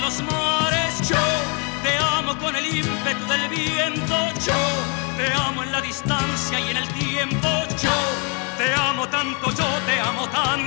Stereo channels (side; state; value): right; quieter; 35.8 dB